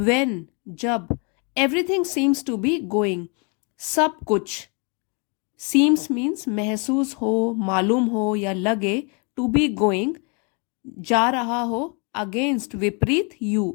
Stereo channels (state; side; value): quieter; right; 34.8 dB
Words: जब, everything seems to be going, सब कुछ, seems means महसूस हो, मालूम हो या लगे, to be going, जा रहा हो, against विपरीत, you